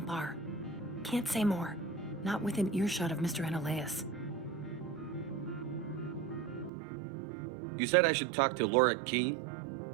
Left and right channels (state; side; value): drops out; left; at 6.7 s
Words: Can't say more. Not within earshot of Mr. Annaleas. You said I should talk to Lorik Keen?